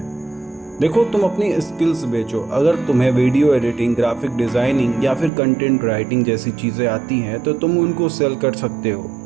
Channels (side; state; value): left; drops out; at 5.3 s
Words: देखो, तुम अपनी स्किल्स बेचो। अगर तुम्हें वीडियो एडिटिंग, ग्राफिक डिज़ाइनिंग या फिर कंटेंट राइटिंग जैसी चीज़ें आती हैं तो तुम उनको सेल कर सकते हो।